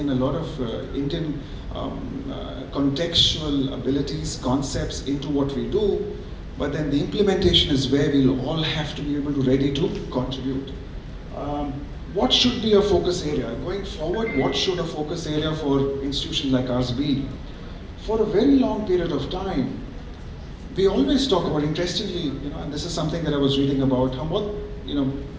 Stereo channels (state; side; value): identical; both; correlation 1.00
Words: a lot of Indian contextual abilities, concepts into what we do, but then the implementation is where we'll all have to be able to ready to contribute. What should be a focus area? Going forward, what should a focus area for institutions like ours be? For a very long period of time, we always talk about, interestingly, and this is something that I was reading about,